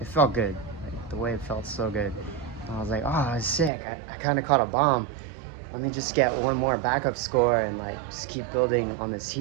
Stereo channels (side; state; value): left; drops out; at 3.7 s